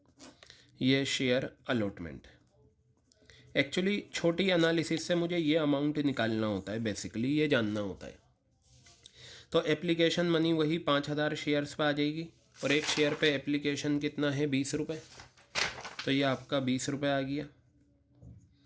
ये शेयर अलॉटमेंट। एक्चुअली छोटी एनालिसिस से मुझे ये अमाउंट निकालना होता है, बेसिकली ये जानना होता है। तो एप्लीकेशन मनी वही 5000 शेयर्स पे आ जाएगी, और एक शेयर पे एप्लीकेशन कितना है, 20 रुपये, तो ये आपका 20 रुपये आ गया।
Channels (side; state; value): both; identical; correlation 1.00